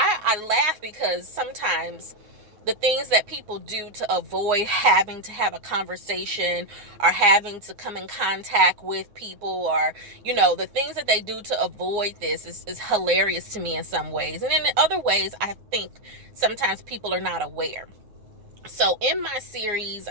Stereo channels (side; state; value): left; late; 9.7 ms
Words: laugh because sometimes the things that people do to avoid having to have a conversation or having to come in contact with people, or the things that they do to avoid this is hilarious to me in some ways. And in other ways, I think sometimes people are not aware. So in my series,